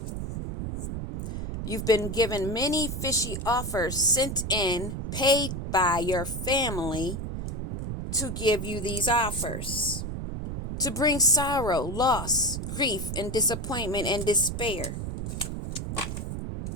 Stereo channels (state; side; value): noise; right; rumble, 5 dB below the sound